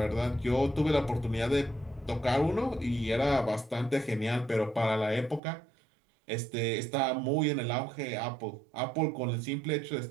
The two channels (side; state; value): left; drops out; at 5.4 s